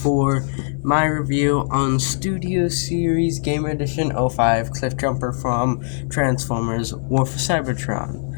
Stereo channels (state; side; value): silent; right; 59 dB below the other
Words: my review on Studio Series Gamer Edition 05 Cliffjumper from Transformers War for Cybertron.